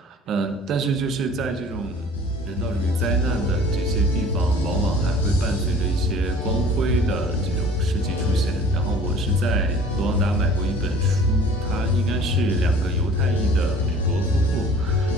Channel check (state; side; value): normal; both; correlation 0.48